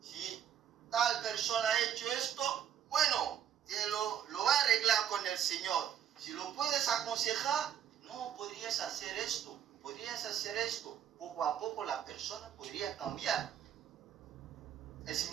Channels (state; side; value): quieter; left; 9.6 dB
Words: si tal persona ha hecho esto, bueno, te lo va a arreglar con el Señor. Si lo puedes aconsejar, no, podrías hacer esto. Poco a poco la persona podría cambiar. Es